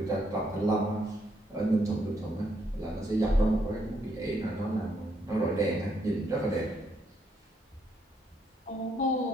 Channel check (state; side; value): normal; both; correlation 0.74